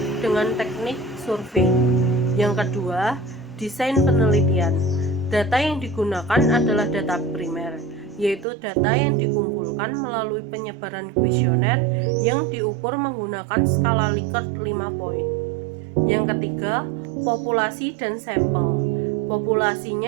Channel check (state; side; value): drops out; left; at 8.5 s